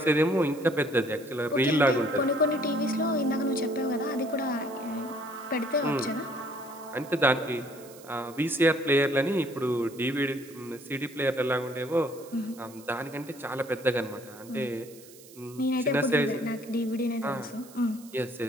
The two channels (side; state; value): right; noise; hiss, 21 dB below the sound